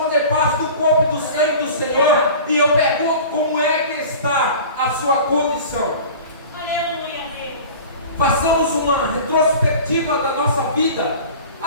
fazer parte do corpo e do sangue do Senhor. E eu pergunto, como é que está a sua condição? Aleluia, Deus. Façamos uma retrospectiva da nossa vida.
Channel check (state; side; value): inverted; both; correlation -0.39